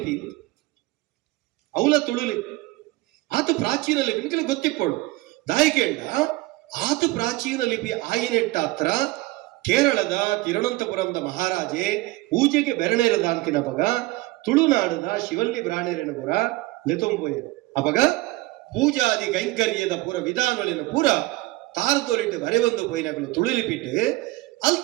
ಅವಲ ತುಳುಲಿಪಿ ಆತ ಪ್ರಾಚೀನ ಲಿಪಿ ನಿಕಲು ಗೊತ್ತಿಪ್ಪಳು ದಾಯಿಕೇಂಡ ಆತ ಪ್ರಾಚೀನ ಲಿಪಿ ಆಯಿನೆಟ್ಟಾತ್ರ ಕೇರಳದ ತಿರುವನಂತಪುರಂದ ಮಹಾರಾಜೆ ಪೂಜೆಗೆ ಬೆರಣೇರದ ಅಂತಿನ ಪಗ ತುಳುನಾಡದ ಶಿವಲ್ಲಿ ಬ್ರಾಣೇರನ ಪುರ ಲೆತೊಂಬೋಯರು ಅಪಗ ಪೂಜಾದಿ ಕೈಂಕರ್ಯದ ಪೂರ ವಿಧಾನಗಳಿನ ಪೂರ ತಾರದೋರಿಟ್ಟು ಬರೆಯೊಂದು ಪೋಯಿನಗಳು ತುಳುಲಿಪಿಟ್ಟು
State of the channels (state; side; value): quieter; left; 20.3 dB